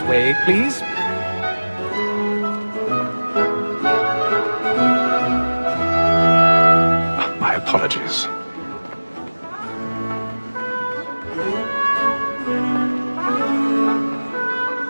way, please. My apologies.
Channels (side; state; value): both; inverted; correlation -1.00